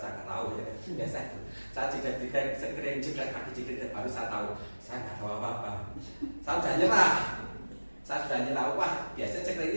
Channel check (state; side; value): inverted; both; correlation -1.00